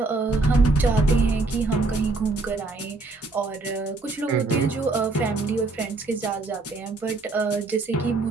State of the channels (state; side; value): quieter; left; 3.4 dB